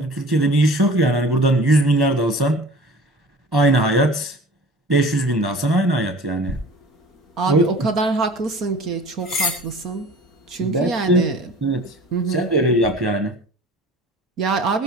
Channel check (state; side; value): normal; both; correlation 0.43